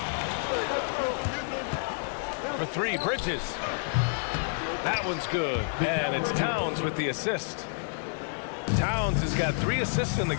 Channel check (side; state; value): right; silent; digital silence